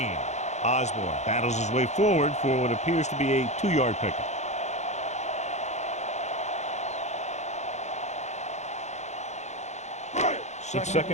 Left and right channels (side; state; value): right; late; 0.33 ms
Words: Osborne battles his way forward for what appears to be a 2-yard pickup. It's